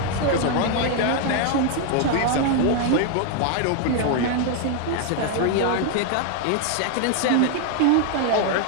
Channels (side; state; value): both; different; correlation 0.00